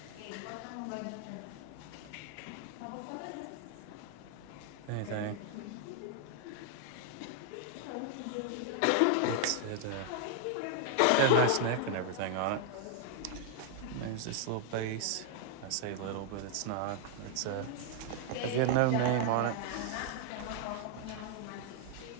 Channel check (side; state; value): both; different; correlation 0.00